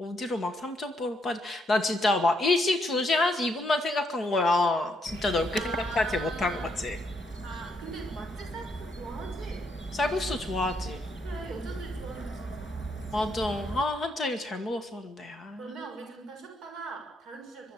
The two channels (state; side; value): normal; both; correlation 0.75